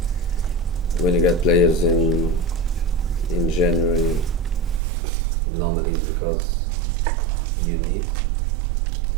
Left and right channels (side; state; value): left; drops out; at 4.8 s